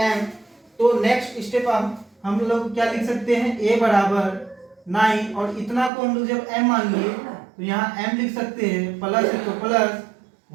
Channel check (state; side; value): drops out; left; at 5.9 s